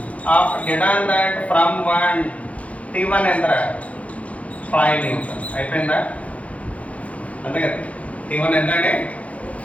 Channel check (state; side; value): late; right; 0.066 ms